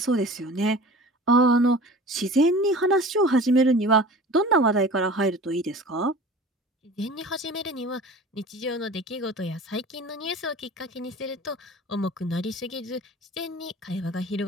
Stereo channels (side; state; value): both; normal; correlation 0.40